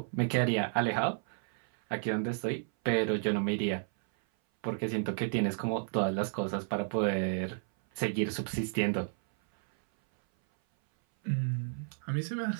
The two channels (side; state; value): left; silent; 56 dB below the other